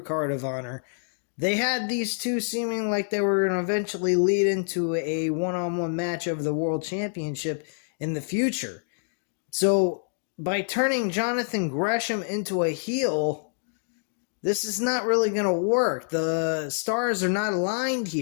of Honor, they had these two seeming like they were going to eventually lead into a one-on-one match of the World Championship in the future. So by turning Jonathan Gresham into a heel, this is not really going to work. The stars are not aligned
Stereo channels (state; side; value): silent; right; digital silence